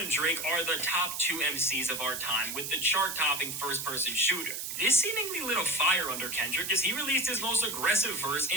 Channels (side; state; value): right; noise; hiss, 5 dB below the sound